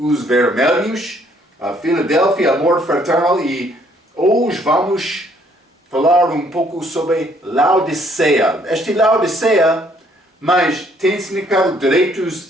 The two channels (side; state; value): both; normal; correlation 0.65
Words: vermelhos, a Filadélfia, amor fraternal, e hoje vamos falar um pouco sobre Laodiceia. Esta Laodiceia, mas tem significado direitos